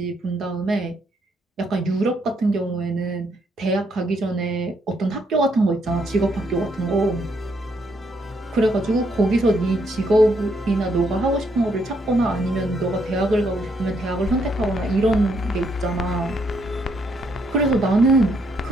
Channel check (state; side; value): normal; both; correlation 0.74